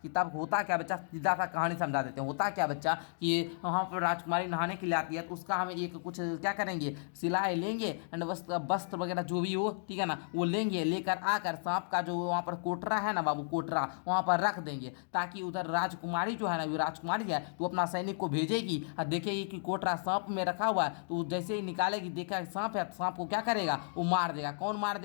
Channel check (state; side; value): silent; right; digital silence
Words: कि तब होता क्या बच्चा, सीधा सा कहानी समझा देते हैं। होता क्या बच्चा कि वहाँ पर राजकुमारी नहाने के लिए आती है तो उसका हमें एक कुछ क्या करेंगे, सिलाए लेंगे एंड वस्त्र वगैरह जो भी हो, ठीक है ना, वो लेंगे। लेकर आकर सांप का जो वहाँ पर कोटरा है ना बाबू, कोटरा वहाँ पर रख देंगे ताकि उधर राजकुमारी जो है ना, वो राजकुमारी है तो अपना सैनिक को भेजेगी और देखेगी कि कोटरा सांप में रखा हुआ है, तो जैसे ही निकालेगी देखा सांप है, सांप को क्या करेगा, वो मार देगा। कौन मार